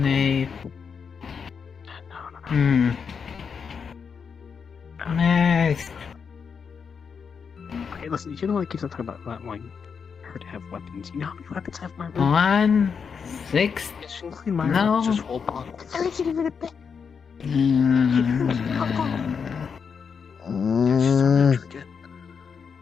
Nice. Okay, listen, you know what keeps on talking about not wanting her to have weapons. You know how many weapons I have in my room? 1, 6. No. Just whole box.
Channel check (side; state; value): right; quieter; 6.2 dB